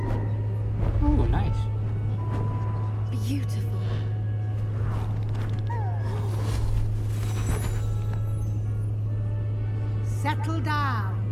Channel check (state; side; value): identical; both; correlation 1.00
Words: Oh, nice. Beautiful. Settle down.